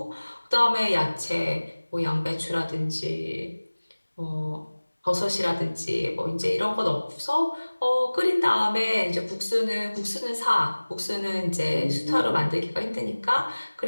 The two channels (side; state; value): both; inverted; correlation -1.00